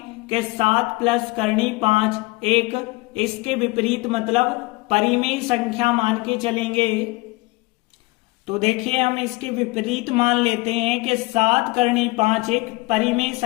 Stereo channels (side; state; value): right; quieter; 23.8 dB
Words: कि 7 + करनी 5 एक, इसके विपरीत मतलब परिमेय संख्या मान के चलेंगे। तो देखिए हम इसके विपरीत मान लेते हैं कि 7 करनी 5 एक परिमेय